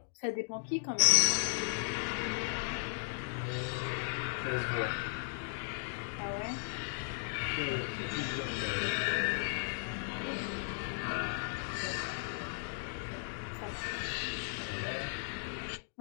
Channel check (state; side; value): silent; right; digital silence